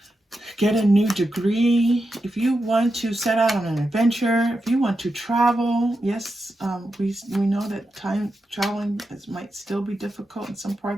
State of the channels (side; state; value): both; normal; correlation 0.88